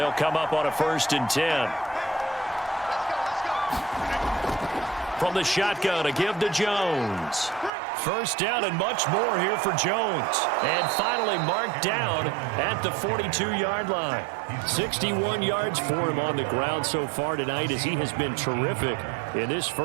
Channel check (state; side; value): drops out; left; at 7.7 s